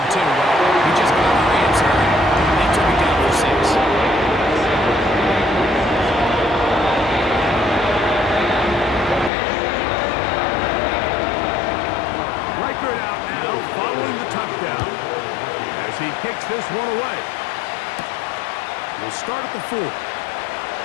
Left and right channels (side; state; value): right; drops out; at 9.3 s